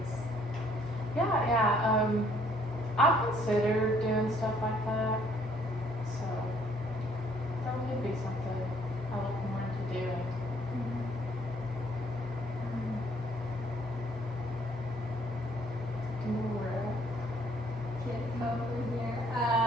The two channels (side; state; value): both; normal; correlation 0.63